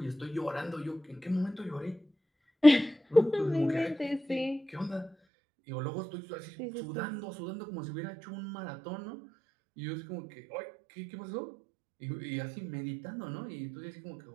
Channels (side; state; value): left; drops out; at 5.2 s